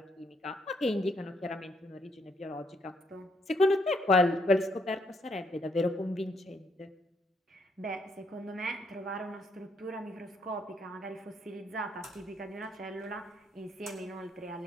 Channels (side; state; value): both; normal; correlation 0.73